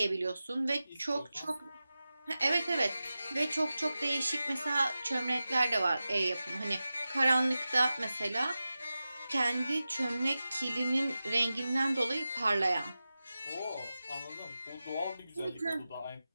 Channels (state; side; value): inverted; both; correlation -0.94